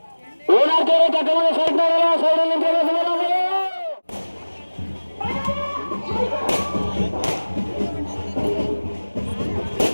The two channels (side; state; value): both; inverted; correlation -1.00